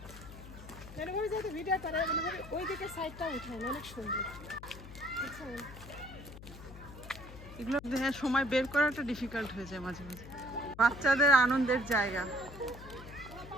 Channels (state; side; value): noise; left; hum, 15 dB below the sound